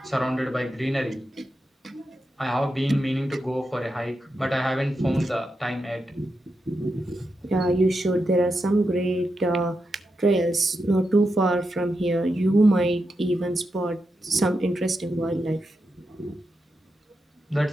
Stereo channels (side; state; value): both; normal; correlation 0.87